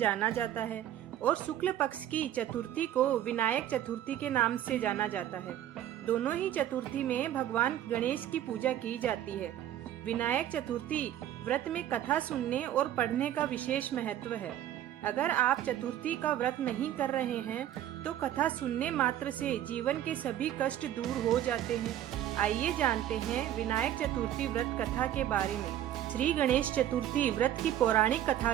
जाता है और शुक्ल पक्ष की चतुर्थी को विनायक चतुर्थी के नाम से जाना जाता है। दोनों ही चतुर्थी में भगवान गणेश की पूजा की जाती है। विनायक चतुर्थी व्रत में कथा सुनने और पढ़ने का विशेष महत्व है। अगर आप चतुर्थी का व्रत नहीं कर रहे हैं तो कथा सुनने मात्र से जीवन के सभी कष्ट दूर हो जाते हैं। आइए जानते हैं विनायक चतुर्थी व्रत कथा के बारे में। श्री गणेश चतुर्थी व्रत की पौराणिक कथा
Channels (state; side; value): quieter; left; 11.7 dB